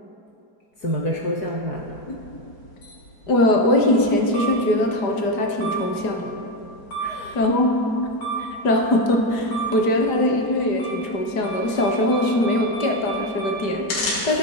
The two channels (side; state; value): right; late; 4.9 ms